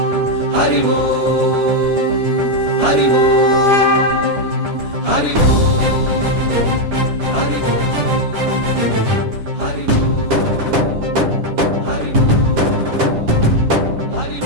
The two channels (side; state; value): left; late; 9.9 ms